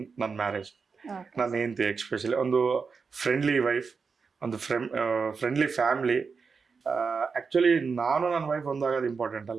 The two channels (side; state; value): left; quieter; 5.1 dB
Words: ಮ್ಯಾರೇಜ್. ನನ್ನ ಹೆಂಡತಿ ಎಕ್ಸ್ಪೆಷಲಿ ಒಂದು ಫ್ರೆಂಡ್ಲಿ ವೈಫ್, ಒಂದು ಫ್ರೆಂಡ್ಲಿ ಫ್ಯಾಮ್ಲಿ. ಆ್ಯಕ್ಚುಲಿ ನಾನು ನನ್ನ ವೈಫ್ ಒಂದಾಗೋದು ಇಂಪಾರ್ಟೆಂಟ್